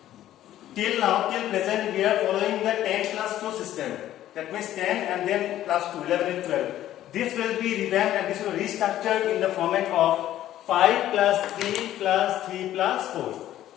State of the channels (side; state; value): right; quieter; 12.9 dB